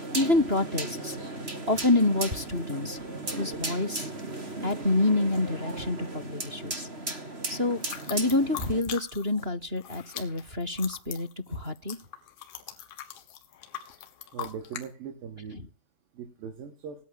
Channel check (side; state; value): left; late; 3.1 ms